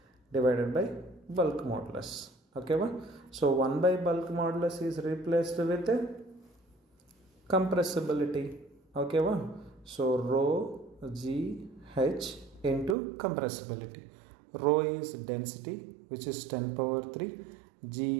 divided by bulk modulus. Okay, so 1 by bulk modulus is replaced with compressibility. Okay, so rho GH into compressibility. Rho is density, which is 10 power 3,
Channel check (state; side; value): drops out; left; at 13.0 s